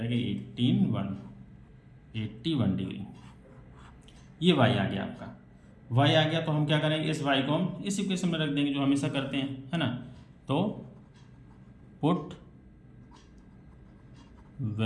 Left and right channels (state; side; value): identical; both; correlation 1.00